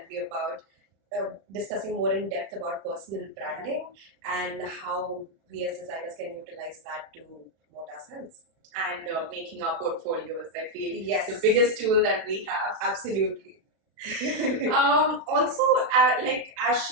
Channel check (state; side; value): late; left; 36 ms